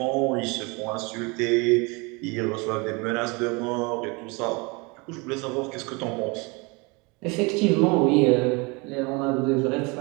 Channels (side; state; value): left; quieter; 28.2 dB